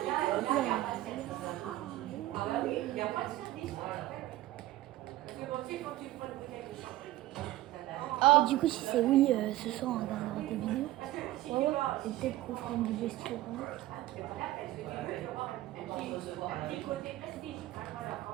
Oh, Et du coup, si c'est oui, ce soir on regardera tes vidéos. Ouais, ouais. Et peut-être qu'on fera une vidéo style.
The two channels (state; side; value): quieter; left; 16.1 dB